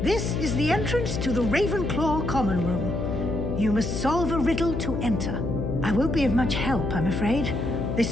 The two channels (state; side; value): noise; left; hum, 3 dB below the sound